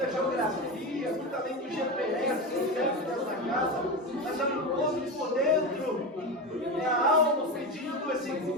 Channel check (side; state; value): both; normal; correlation 0.20